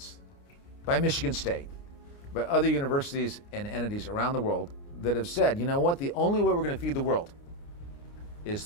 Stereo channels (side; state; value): right; late; 29 ms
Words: by Michigan State, by other universities and entities around the world that have said, you know what, the only way we're going to feed the world